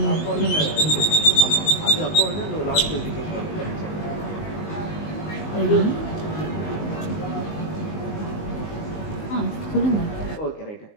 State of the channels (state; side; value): late; right; 19 ms